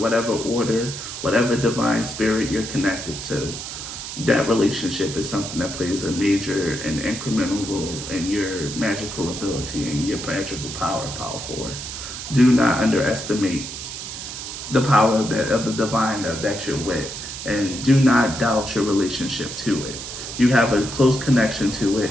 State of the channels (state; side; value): noise; right; hiss, 8 dB below the sound